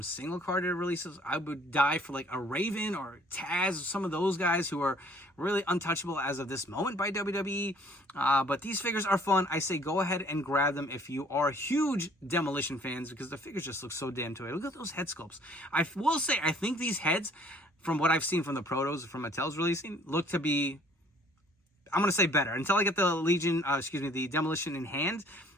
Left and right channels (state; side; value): normal; both; correlation 0.58